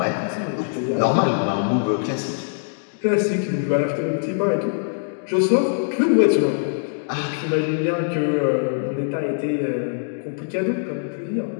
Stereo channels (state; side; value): silent; right; digital silence